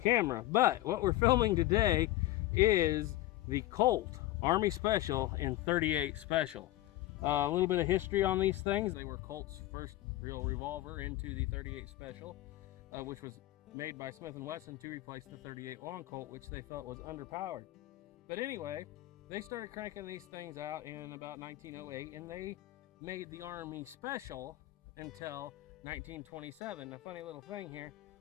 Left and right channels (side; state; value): right; quieter; 16.1 dB